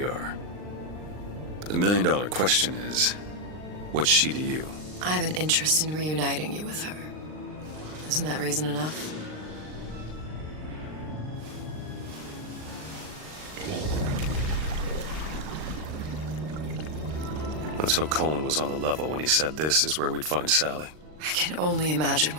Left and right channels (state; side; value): late; left; 39 ms